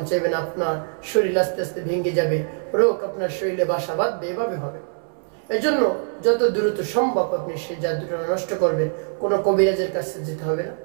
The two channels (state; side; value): silent; left; 63 dB below the other